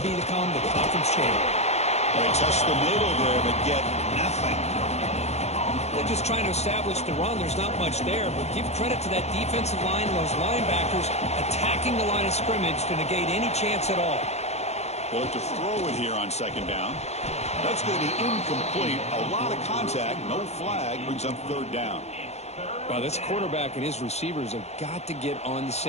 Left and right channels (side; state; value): right; late; 0.31 ms